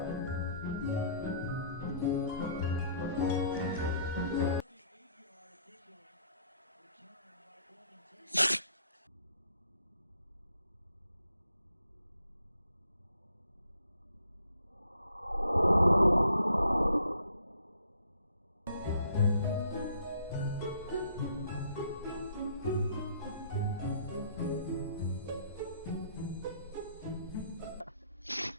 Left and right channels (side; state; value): both; inverted; correlation -0.63